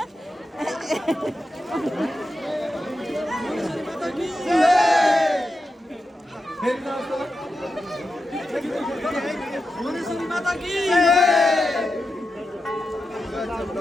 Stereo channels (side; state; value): both; normal; correlation 0.89